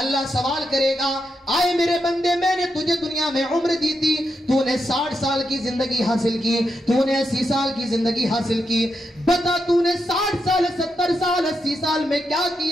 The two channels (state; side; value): normal; both; correlation 0.84